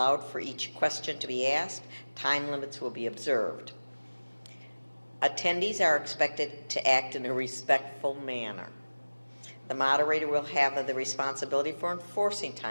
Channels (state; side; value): inverted; both; correlation -1.00